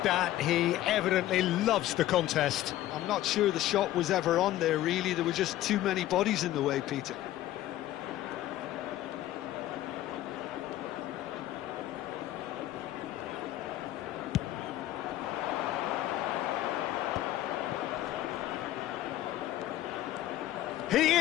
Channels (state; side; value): quieter; right; 14.2 dB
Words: that. He evidently loves the contest. I'm not sure the shot was ever on there, really. There were just too many bodies in the way, Peter. He